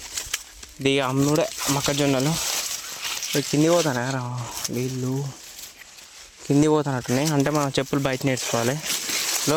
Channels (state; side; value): identical; both; correlation 1.00